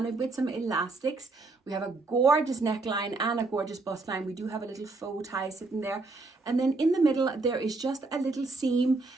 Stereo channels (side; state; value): left; quieter; 3.5 dB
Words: it with some elastics. We have a gorgeous neckline and a gorgeous bust line. We do have a little faux tie sitting there. And then in the middle, there is just a little seam